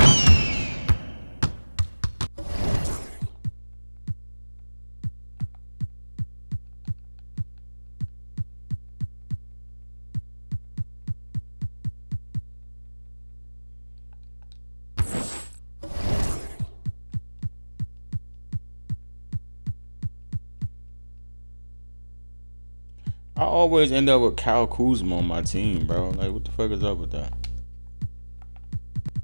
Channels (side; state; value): both; inverted; correlation -1.00